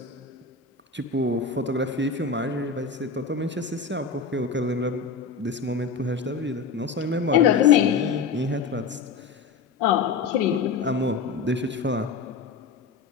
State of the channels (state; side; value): quieter; right; 5.2 dB